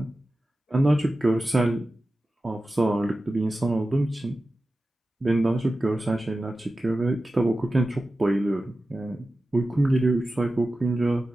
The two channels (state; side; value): normal; both; correlation 0.94